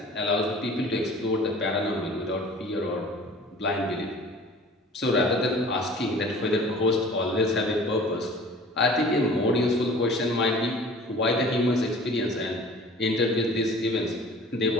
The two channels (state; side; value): normal; both; correlation 0.46